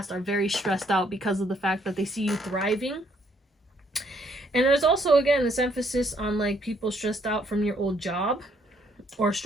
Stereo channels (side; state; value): both; normal; correlation 0.68